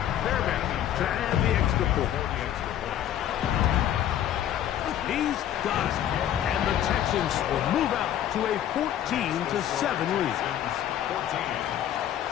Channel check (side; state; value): right; quieter; 11.1 dB